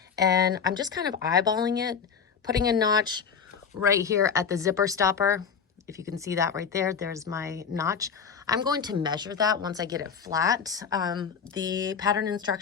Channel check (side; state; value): right; quieter; 6.5 dB